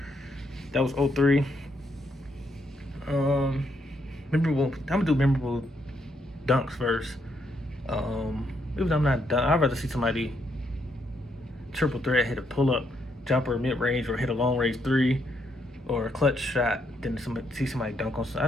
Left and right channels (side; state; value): both; normal; correlation 0.76